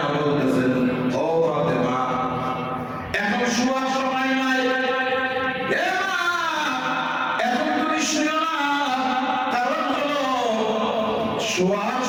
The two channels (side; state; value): both; identical; correlation 1.00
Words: বলতেছেন, ও ফাতেমা, এখন শোয়ার সময় নাই, এ মা, এখন তুমি শুয়ো না। কারণ হলো শোয়ার